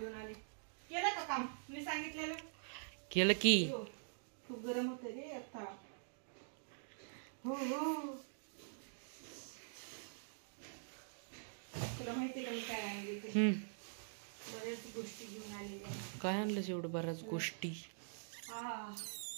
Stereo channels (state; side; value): silent; left; digital silence